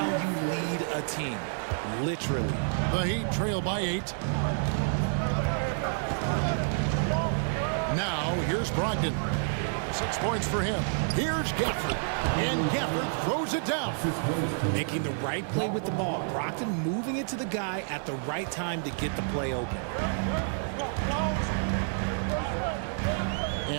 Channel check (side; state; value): left; silent; digital silence